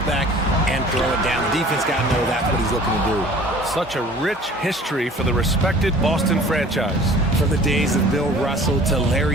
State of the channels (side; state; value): both; normal; correlation 0.48